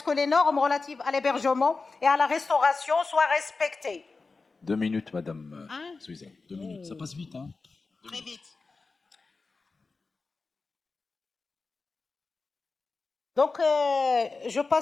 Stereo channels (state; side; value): quieter; right; 4.0 dB